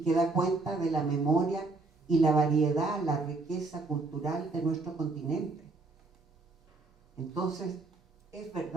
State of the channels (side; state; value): left; quieter; 3.6 dB